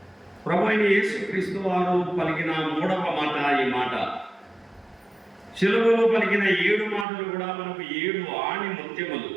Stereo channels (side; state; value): left; drops out; at 7.1 s